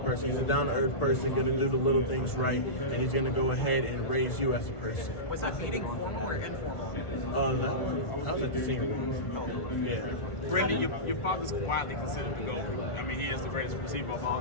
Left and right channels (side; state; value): right; late; 1.5 ms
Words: He's a down-to-earth person, going to do the little things right, and he's going to go ahead and raise you as a person. Was that meeting formal or informal? I was at the senior room. Yeah. Brenden, your father's widely considered the GOAT. I mean, he is the greatest receiver of all